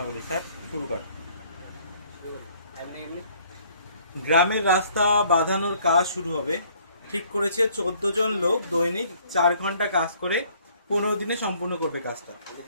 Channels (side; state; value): both; inverted; correlation -0.61